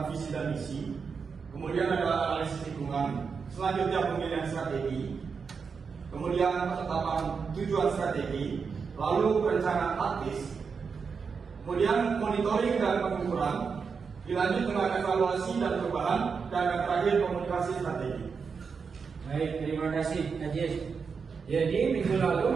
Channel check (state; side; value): quieter; left; 5.6 dB